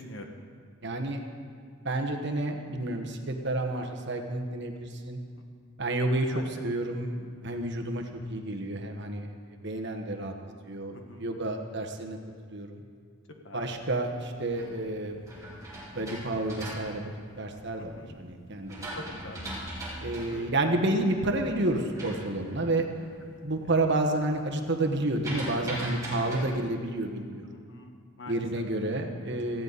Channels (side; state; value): both; normal; correlation 0.28